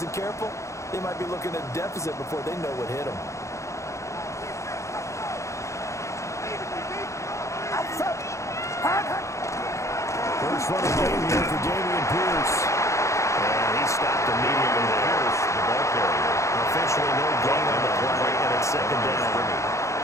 careful, they might be looking at a deficit before they know what hit them. First run of the game here for Dameon Pierce. And he stopped immediately there. Pierce, the ball carrier. Officially no gain on the play, and it's second down.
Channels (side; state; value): right; late; 0.14 ms